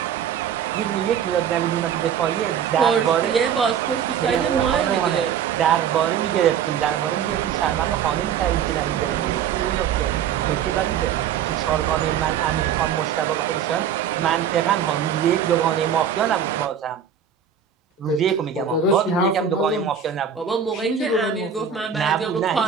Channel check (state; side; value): quieter; left; 8.1 dB